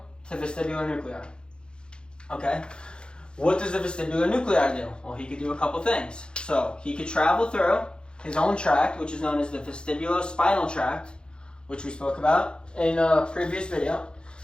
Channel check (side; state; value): right; late; 0.051 ms